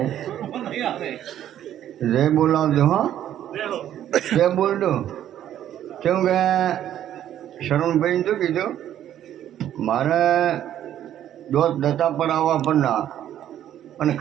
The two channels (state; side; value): quieter; left; 11.2 dB